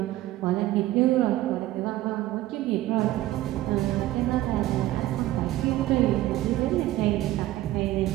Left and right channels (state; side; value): quieter; left; 15.5 dB